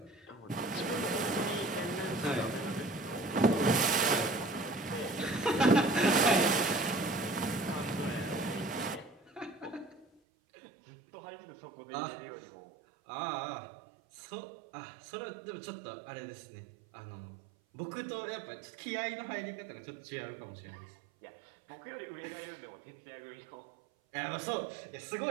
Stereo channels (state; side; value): drops out; left; at 10.1 s